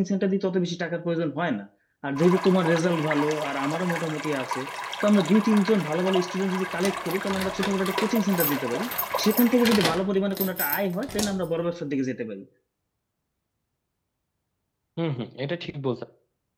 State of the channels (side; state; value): both; identical; correlation 1.00